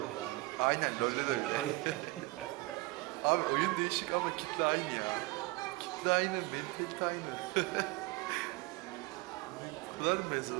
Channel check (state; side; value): quieter; left; 22.8 dB